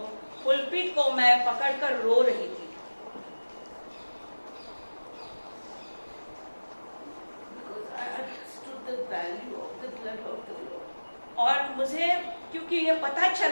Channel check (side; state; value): both; inverted; correlation -1.00